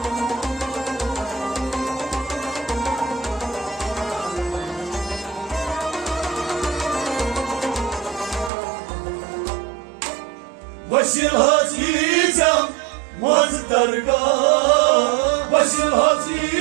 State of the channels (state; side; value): drops out; left; at 8.5 s